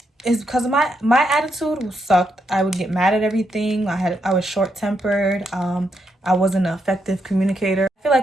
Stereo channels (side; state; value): both; normal; correlation 0.80